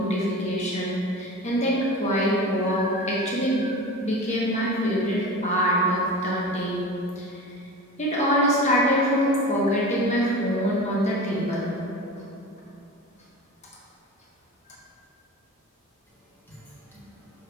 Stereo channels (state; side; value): normal; both; correlation 0.33